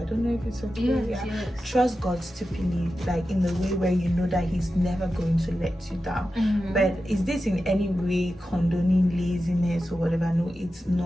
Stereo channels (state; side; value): normal; both; correlation 0.92